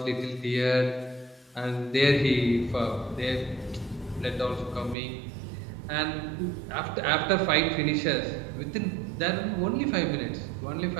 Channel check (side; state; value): left; drops out; at 5.0 s